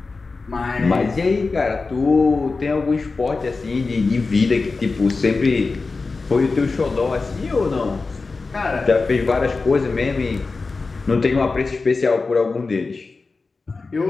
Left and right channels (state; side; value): quieter; right; 4.0 dB